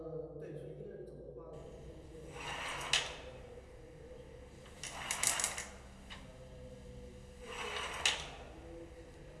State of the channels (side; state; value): both; identical; correlation 1.00